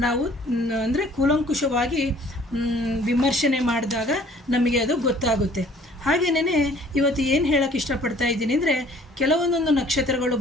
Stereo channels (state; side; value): normal; both; correlation 0.55